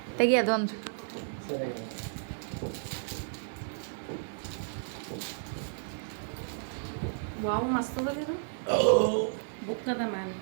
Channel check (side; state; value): left; silent; digital silence